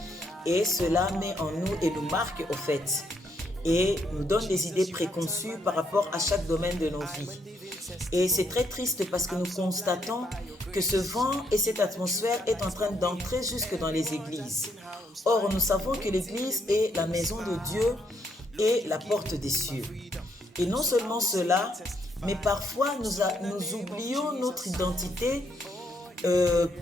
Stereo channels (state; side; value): normal; both; correlation 0.74